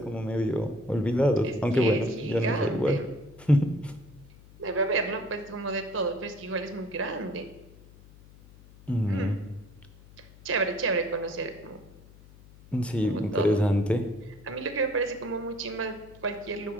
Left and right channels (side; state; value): left; noise; hum, 22 dB below the sound